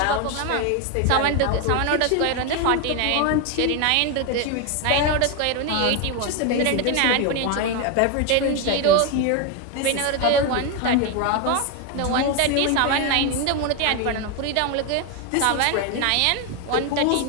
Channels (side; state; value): both; different; correlation 0.01